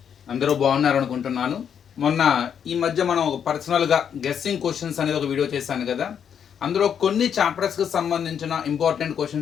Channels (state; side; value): quieter; right; 8.1 dB